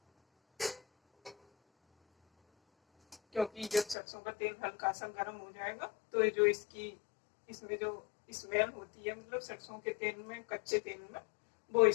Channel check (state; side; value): drops out; right; at 4.0 s